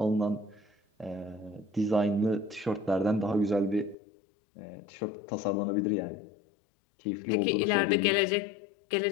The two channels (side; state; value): right; drops out; at 4.0 s